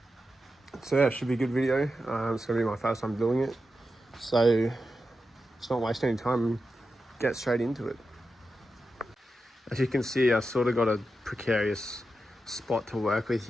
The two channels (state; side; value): normal; both; correlation 0.90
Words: yeah, it should be a good video. It's gonna be my first time doing it, so let's not waste any time and get straight into it. As you can see, I sort of got a precarious spot to work with